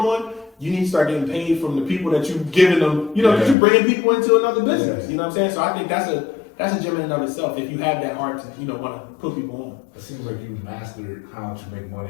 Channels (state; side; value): drops out; right; at 3.6 s